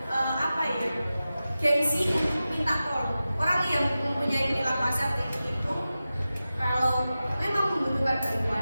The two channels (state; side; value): inverted; both; correlation -0.94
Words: gengsi minta tolong. Orang yang mempunyai perilaku asertif itu kalau memang membutuhkan